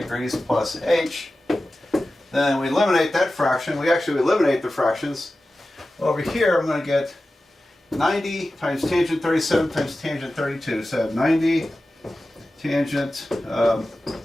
plus h, then we eliminate that fraction. We actually eliminate the fractions. Over here I'm going to get 90 times tangent 37 times tangent 32. So I have 90 tangent,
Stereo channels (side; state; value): both; normal; correlation 0.94